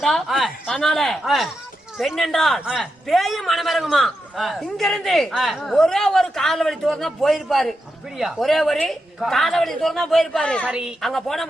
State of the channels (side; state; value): both; normal; correlation 0.87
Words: அதனால பெண் என்றால் பேயும் மனமிறங்குமா. இங்க இருந்து ஒரே ஒரு காலவழி தூரம் தான் போயிருப்பாரு. அப்படியா? ஒரே ஒரு காலவழி தூரம் தான் போயிருப்பாரு. சரி, அங்க போனா